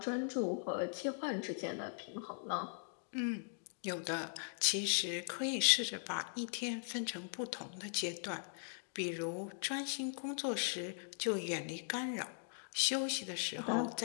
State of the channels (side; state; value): right; silent; digital silence